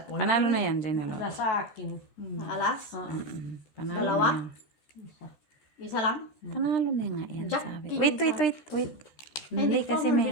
Panalo na yan, Janelo. Wala sa akin. Alas? Panalo Dalawa? na yan. Isa lang? Panalo na nga yan, Jack, sabi. king Wait. Ay, Hindi di ko kasi mo meron.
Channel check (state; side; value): late; right; 13 ms